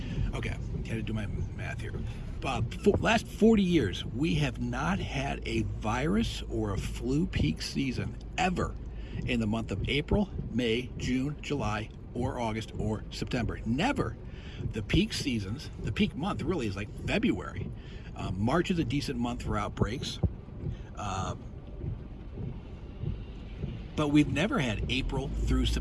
Okay, had to do my math here. Last 40 years, we have not had a virus or a flu peak season ever in the month of April, May, June, July, or August, or September. Never. The peak seasons, the peak month really is like February. March is a decent month for outbreaks. But we've never had April through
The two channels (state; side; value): identical; both; correlation 1.00